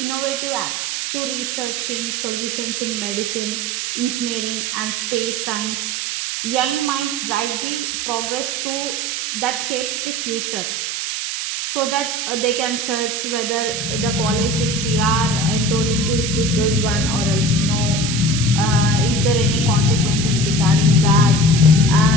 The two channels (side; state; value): right; noise; hiss, 2 dB below the sound